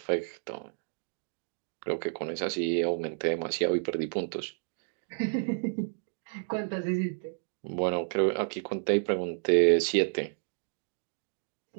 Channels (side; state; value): left; silent; digital silence